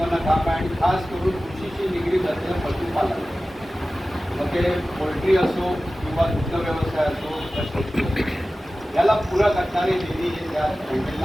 काम आहे आणि खास करून कृषीशी निगडीत असलेलं पशुपालन, मग ते पोल्ट्री असो किंवा दुग्ध व्यवसाय असो, याला पूरक असणारे निधी हे त्या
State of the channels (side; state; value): both; normal; correlation 0.96